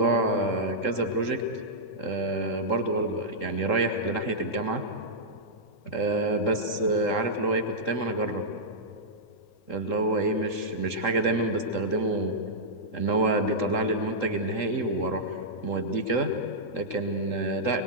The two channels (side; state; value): right; late; 3.7 ms